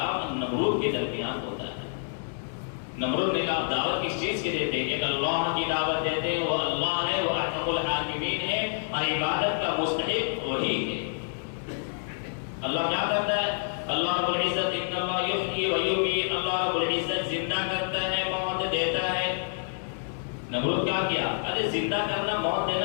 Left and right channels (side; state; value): right; silent; 59 dB below the other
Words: نمرود کے درمیان ہوتا ہے۔ نمرود نے کہا دعوت کس چیز کی دیتے ہیں؟ ایک اللہ کی دعوت دیتے ہیں، وہ اللہ ہے، وہ ارحم الراحمین ہے، اور عبادت کا مستحق وہی ہے۔ اللہ کیا کرتا ہے؟ اللہ رب العزت ان اللہ یحیی و یمیت، اللہ رب العزت زندہ کرتا ہے، موت دیتا ہے۔ نمرود کیا کیا؟ ارے زندہ کرنا، موت